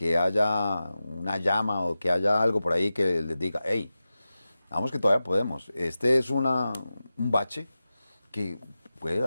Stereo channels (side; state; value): both; inverted; correlation -0.94